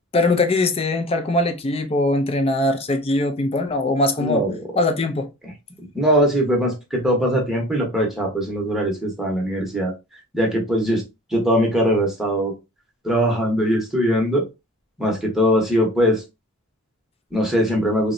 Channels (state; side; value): normal; both; correlation 0.44